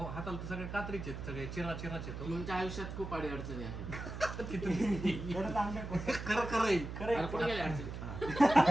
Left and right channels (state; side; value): noise; right; hum, 7 dB below the sound